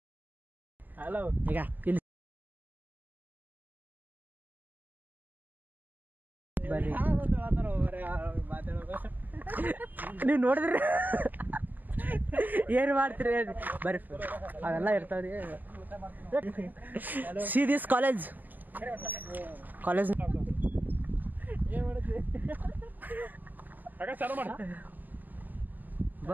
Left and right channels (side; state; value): left; late; 0.085 ms